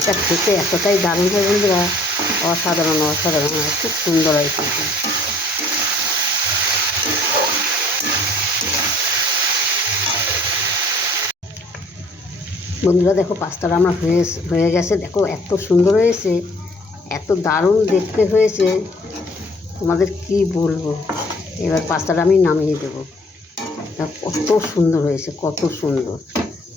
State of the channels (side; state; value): both; normal; correlation 0.57